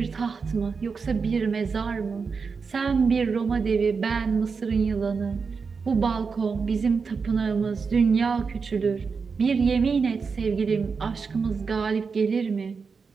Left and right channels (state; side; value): quieter; left; 5.2 dB